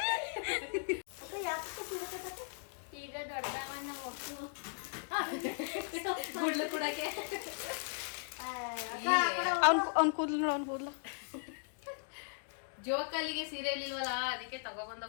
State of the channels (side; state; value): right; silent; digital silence